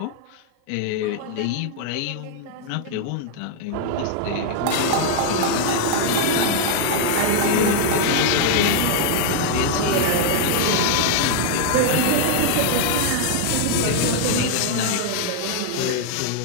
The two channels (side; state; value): both; different; correlation 0.00